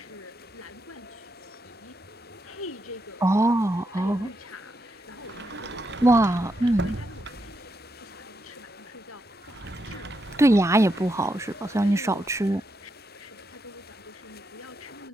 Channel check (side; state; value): both; normal; correlation 0.82